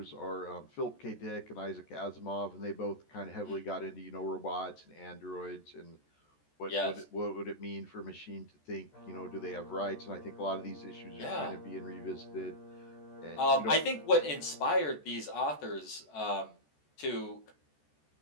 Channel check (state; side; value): late; right; 14 ms